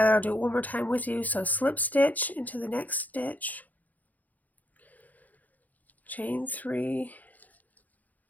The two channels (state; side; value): late; right; 0.080 ms